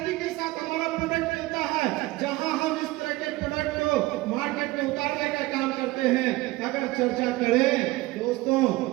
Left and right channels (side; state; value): left; quieter; 19.6 dB